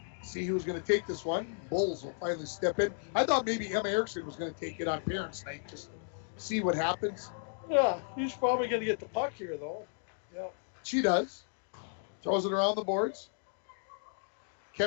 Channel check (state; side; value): silent; right; digital silence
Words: See who's going to take this one. Bulls will finally step in. I thought maybe Emma Erickson was going to take it on Parents' Night just to see what happens. Yeah, he's probably going to get the puck here, though. Yeah. She does. Throws it around the boards.